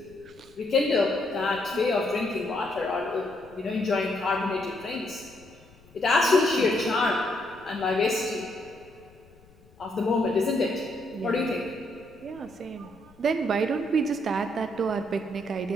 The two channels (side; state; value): left; noise; rumble, 26 dB below the sound